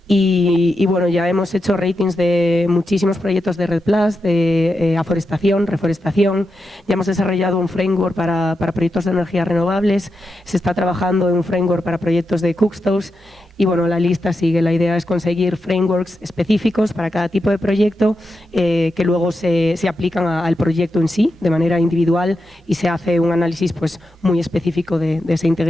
Y bueno, ya hemos hecho ratings de muchísimos proyectos de REDD+, de aforestación, reforestación. Ya hemos desarrollado un framework para proyectos de energías renovables. Se está trabajando en un framework para proyectos de cookstoves. Y bueno, la lista sigue. La idea es conseguir frameworks específicos para cada tipo de proyecto que luego se aplican al proyecto en sí, de manera individual, y se hace un análisis pues, muy específico de esa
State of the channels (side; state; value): both; normal; correlation 0.87